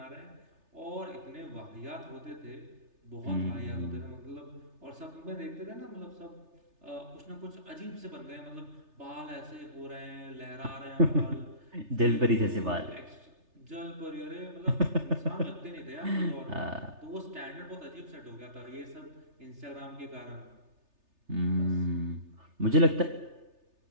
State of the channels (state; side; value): late; left; 3.3 ms